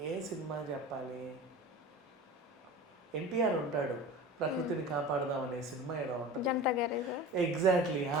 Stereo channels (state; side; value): normal; both; correlation 0.34